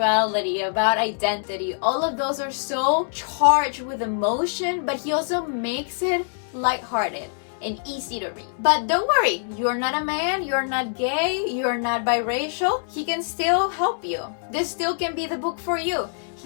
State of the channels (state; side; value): silent; right; 62 dB below the other